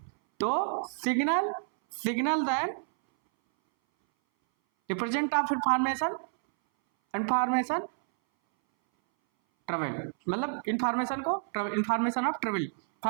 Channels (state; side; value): silent; left; 58 dB below the other